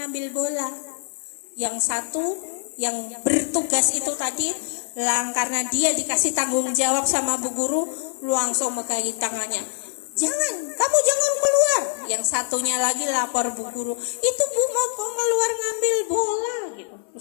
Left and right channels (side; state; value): right; silent; digital silence